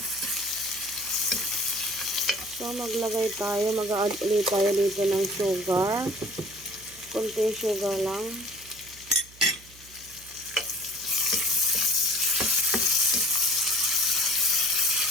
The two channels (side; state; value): right; noise; hum, 23 dB below the sound